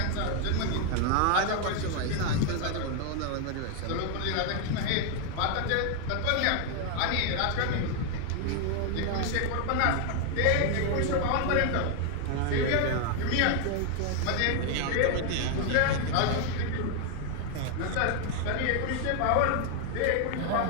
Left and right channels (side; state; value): both; different; correlation 0.00